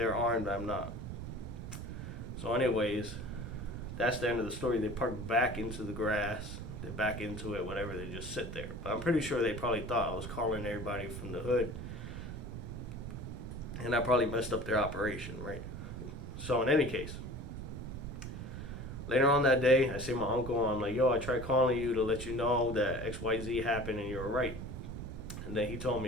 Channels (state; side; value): noise; right; rumble, 7 dB below the sound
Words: armed, I'm not. So anyways, that's the end of the story. They park back into the grass. They're back into it, whatever. They just sit there. But I'm pretty sure they probably thought I was calling everybody from the hood. And I probably messed up their operation, right? So in any case, later on that day, I see my uncle. I'm like, "Yo, I tried calling you to let you know that XYZ happened and you were right." And then he told